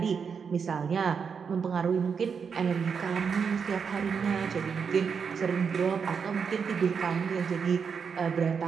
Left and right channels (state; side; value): quieter; left; 6.2 dB